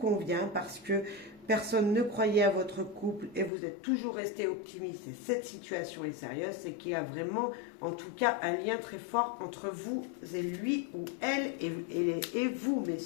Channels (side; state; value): right; drops out; at 3.5 s